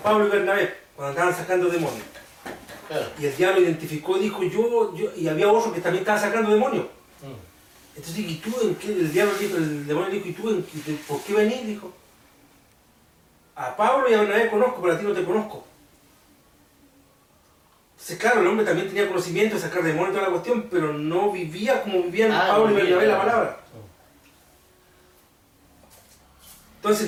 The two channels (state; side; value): identical; both; correlation 1.00